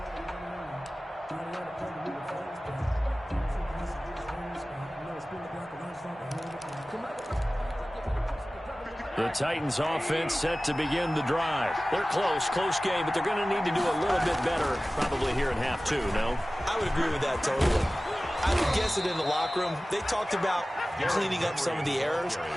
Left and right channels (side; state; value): both; normal; correlation 0.97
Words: The Titans offense set to begin the drive. They're close game, but they're going to need to do a little bit better probably here in half 2, no? I would agree with that totally. I would guess it in the locker room. They talked about cleaning up some of the errors,